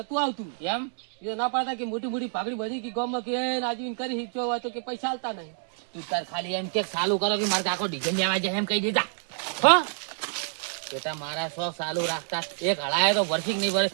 આવતું એમ એ ના પાડતા કે મોટી મોટી પાઘડી બધી કે ગામમાં કે આજીવીન કરી હિચો હોય તો કે પૈસા આલતા નહીં તું તાર ખાલી એમ કે ચાલુ કરો કે મારે કાકો ડીઝલ લેવા જાય એમ કહી દીધા હા બેટા મારા શોખ ચાલુ રાખતા એક હળાય તો ભરશી નહીં ભરે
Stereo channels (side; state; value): left; silent; digital silence